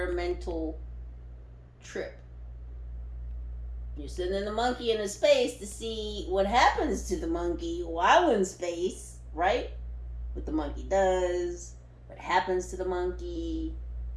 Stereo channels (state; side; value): identical; both; correlation 1.00